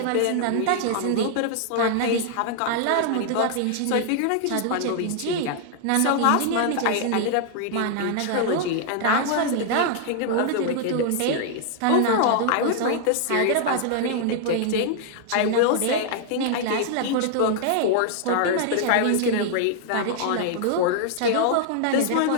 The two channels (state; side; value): different; both; correlation -0.01